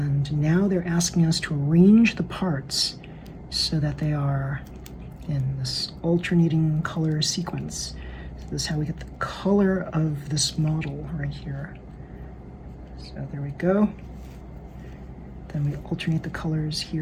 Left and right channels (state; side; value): identical; both; correlation 1.00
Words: now they're asking us to arrange the parts so that they are in this alternating color sequence. So this is how we get the color of this model right here. So there we go. Then we alternate the colors